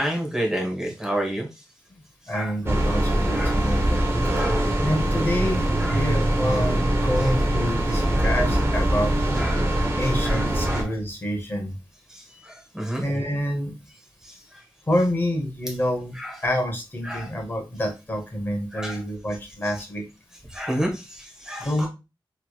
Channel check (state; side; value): normal; both; correlation 0.90